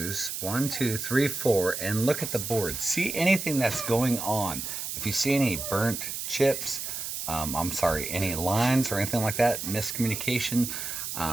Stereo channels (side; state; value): right; noise; hiss, 5 dB below the sound